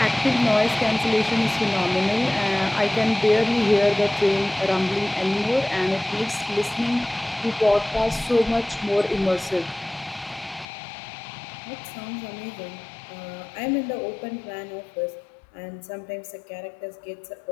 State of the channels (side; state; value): right; drops out; at 10.7 s